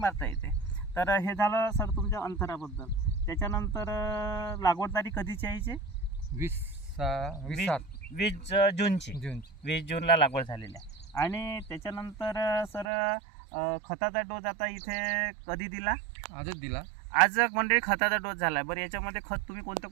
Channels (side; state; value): left; drops out; at 12.9 s